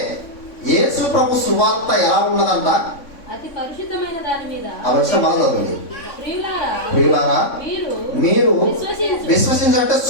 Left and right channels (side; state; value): right; late; 3.5 ms